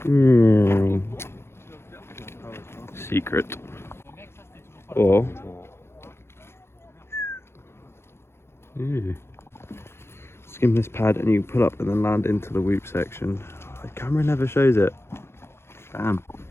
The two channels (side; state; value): right; late; 0.12 ms